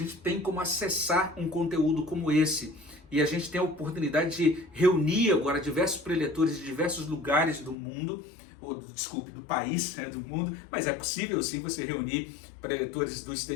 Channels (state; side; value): drops out; right; at 7.8 s